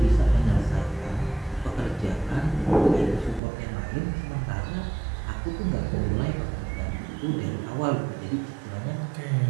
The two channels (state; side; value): drops out; left; at 3.4 s